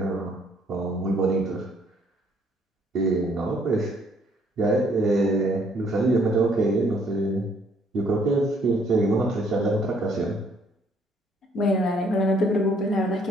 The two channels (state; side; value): normal; both; correlation 0.65